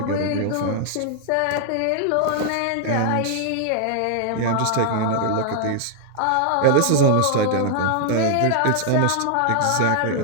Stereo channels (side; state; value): both; different; correlation 0.00